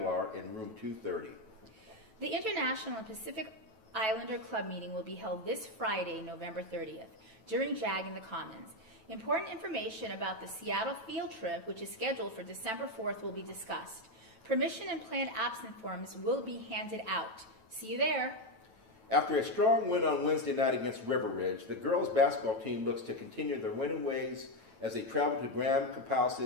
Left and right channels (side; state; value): left; late; 9.1 ms